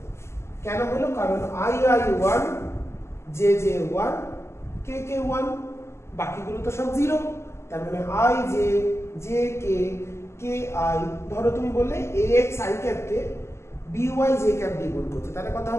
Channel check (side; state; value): right; late; 0.13 ms